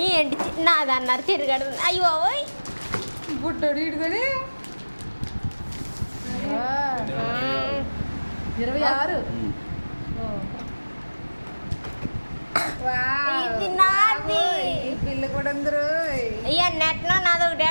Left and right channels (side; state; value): both; inverted; correlation -1.00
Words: ఏంటి నాదన్నారు తిరగడు అయ్యో బుట్టోడు ఇడుకొని 26 ఇది నాది పిల్ల కూడా అందరూ అయ్యా నెట్లో నాది ఒకటి